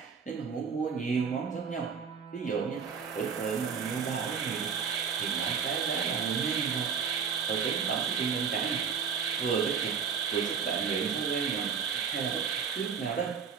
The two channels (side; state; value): left; quieter; 6.4 dB